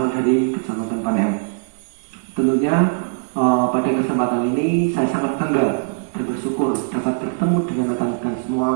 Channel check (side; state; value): left; silent; digital silence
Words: dari Kecamatan Panen. Tentunya pada kesempatan ini saya sangat bangga dan bersyukur dapat bertemu dengan rekan-rekan semua